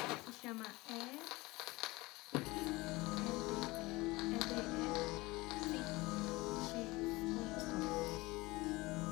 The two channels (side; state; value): right; quieter; 21.8 dB